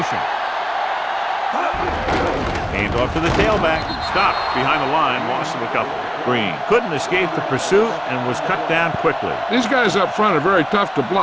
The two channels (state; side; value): identical; both; correlation 1.00